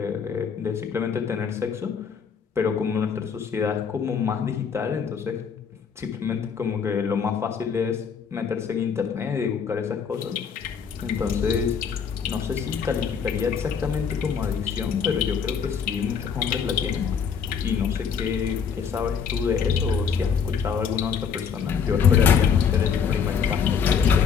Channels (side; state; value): right; quieter; 6.7 dB